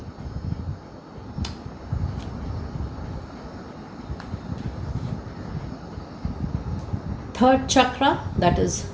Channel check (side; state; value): both; identical; correlation 1.00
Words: Third chakra, that is